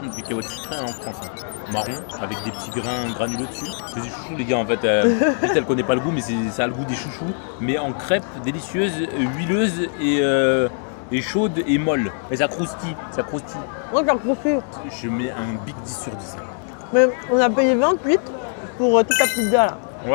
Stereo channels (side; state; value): right; silent; 56 dB below the other